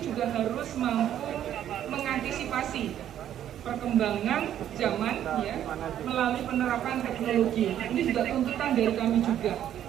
harus mampu mengantisipasi perkembangan zaman ya melalui penerapan teknologi. Ini juga tuntutan dari kami juga,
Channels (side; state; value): left; quieter; 10.9 dB